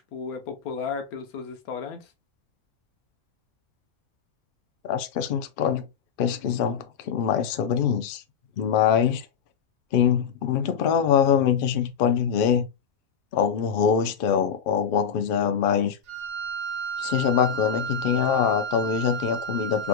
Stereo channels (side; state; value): right; quieter; 6.9 dB